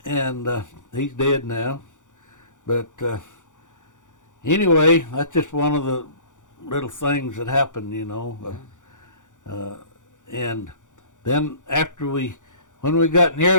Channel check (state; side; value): late; right; 0.86 ms